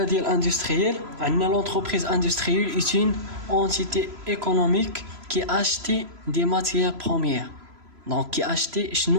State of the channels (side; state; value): left; late; 3.0 ms